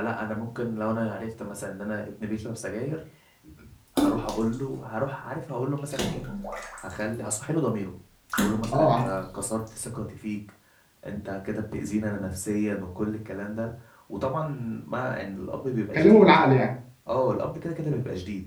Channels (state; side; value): identical; both; correlation 1.00